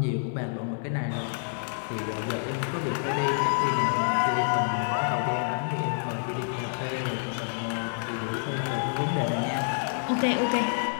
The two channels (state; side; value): silent; right; 59 dB below the other